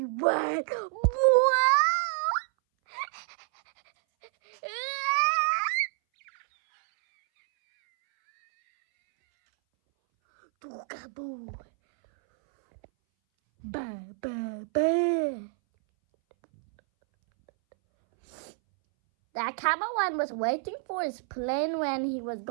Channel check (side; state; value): left; silent; 59 dB below the other